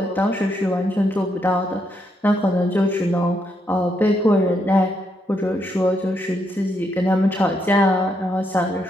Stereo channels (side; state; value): both; normal; correlation 0.78